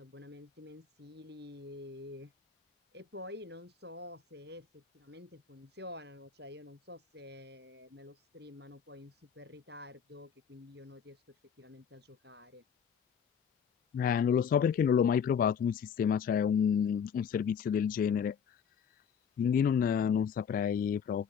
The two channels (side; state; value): right; quieter; 7.3 dB